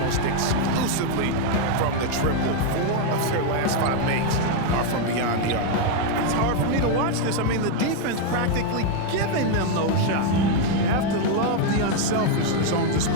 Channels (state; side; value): different; both; correlation 0.01